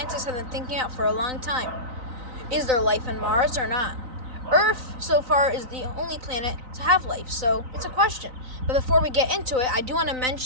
have been thinking about for a long time. Is there life on Mars or not? Earth, so far, is the only planet to have life, so it's a question. But before we get into it, I do want to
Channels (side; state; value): left; late; 3.9 ms